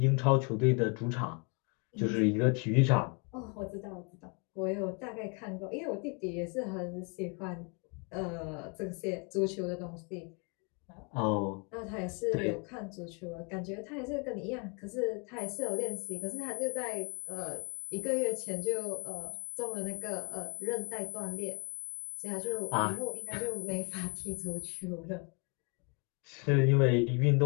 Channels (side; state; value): right; quieter; 34.0 dB